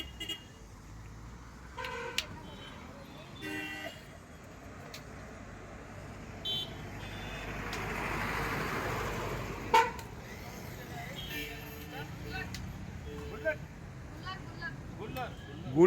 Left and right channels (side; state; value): both; identical; correlation 1.00